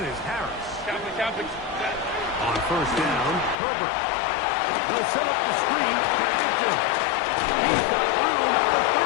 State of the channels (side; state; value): right; drops out; at 3.6 s